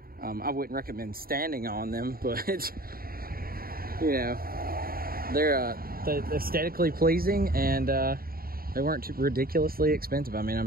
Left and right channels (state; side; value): late; left; 0.43 ms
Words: I wouldn't recommend standing on them, but you know, they're aesthetically pleasing, and they weren't too ridiculously expensive. I mean,